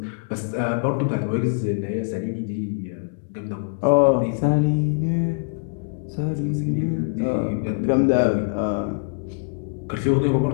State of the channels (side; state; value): right; silent; digital silence